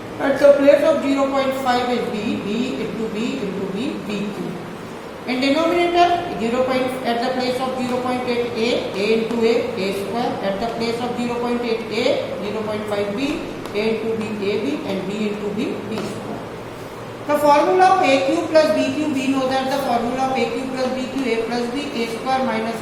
at the place of 0.5 is b into b into b cube. In denominator, at the place of 0.8 a into a square. At the place of 0.8 a, 0.5 b, a into b, ab and b into b square. The formula of a cube plus b cube, we know that the formula of a cube plus b cube, a plus b, a square minus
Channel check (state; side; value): identical; both; correlation 1.00